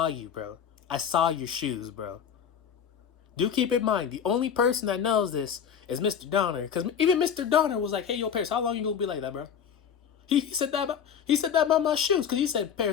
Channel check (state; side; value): quieter; right; 7.8 dB